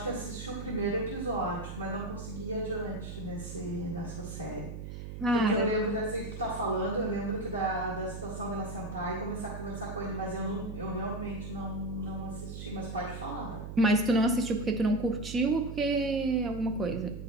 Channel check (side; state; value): right; noise; hum, 8 dB below the sound